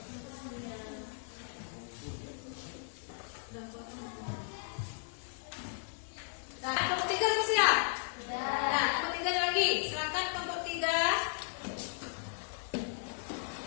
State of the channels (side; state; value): right; silent; digital silence